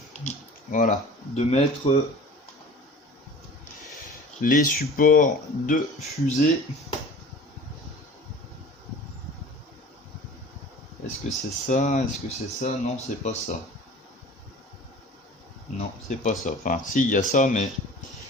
voilà, de mettre les supports de fusée. Est-ce que c'est ça? Est-ce que c'est ça? Non, c'est pas ça. Non, c'est pas ça. Enfin, si, il y a ça, mais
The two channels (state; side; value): normal; both; correlation 0.42